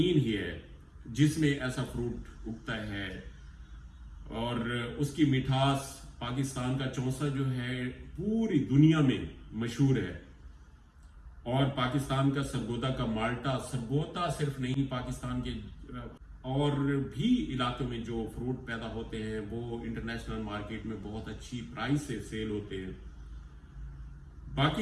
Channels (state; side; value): identical; both; correlation 1.00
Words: ही है जिसमें ऐसा फ्रूट उगता है और उसकी मिठास पाकिस्तान का चौसा जो है पूरी दुनिया में मशहूर है। और पाकिस्तान का सरगोदा का माल्टा, सरगोदा सिर्फ नहीं, पाकिस्तान के और भी इलाकों में जो फ्रूट पैदा होते हैं वो इंटरनेशनल मार्केट में बहुत अच्छी प्राइस से सेल होते हैं।